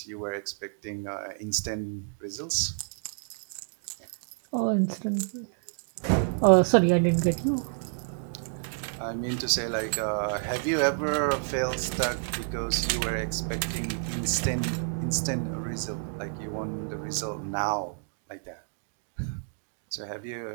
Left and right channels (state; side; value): silent; left; digital silence